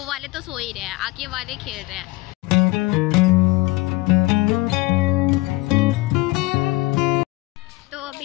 वाले तो सो ही रहे हैं, आके वाले खेल रहे हैं। तो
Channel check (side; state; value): right; quieter; 21.7 dB